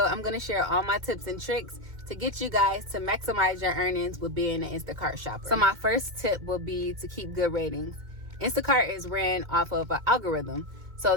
I'm going to share all my tips and tricks to get you guys to maximize your earnings with being an Instacart shopper. So my first tip will be to keep good ratings. Instacart is ran off of an algorithm. So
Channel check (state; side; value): late; left; 2.1 ms